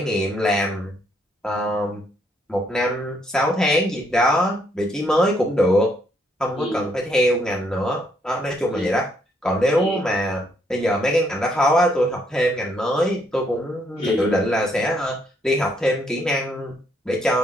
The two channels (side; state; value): both; normal; correlation 0.72